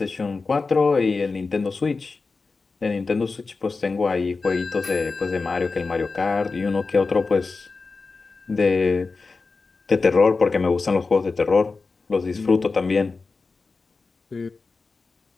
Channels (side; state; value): right; quieter; 4.1 dB